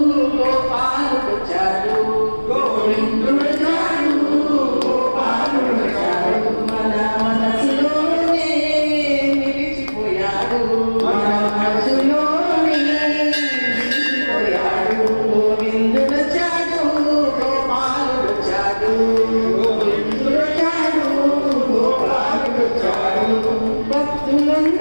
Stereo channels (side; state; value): both; inverted; correlation -1.00